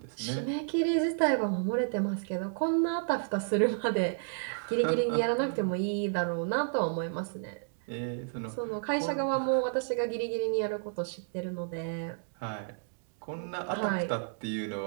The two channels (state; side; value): silent; left; digital silence